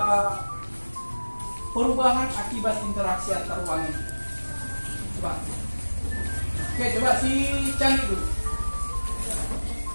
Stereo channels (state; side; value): inverted; both; correlation -1.00